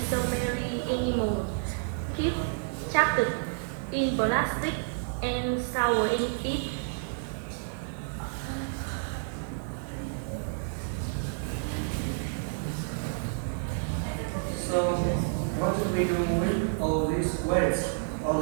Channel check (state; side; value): silent; left; digital silence